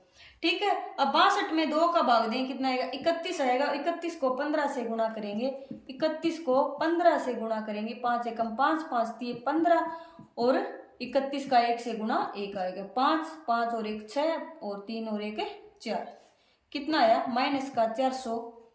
ठीक है, अब 62 में 2 का भाग दें कितना आएगा 31 आएगा। 31 को 15 से गुणा करेंगे, 31 को 15 से गुणा करेंगे, 5 एकम 5, 5 3 15, और 31 का 1 से गुणा 1 आएगा 5, 5 और 1 6, और 3 और 1 4, कितना आया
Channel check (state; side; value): identical; both; correlation 1.00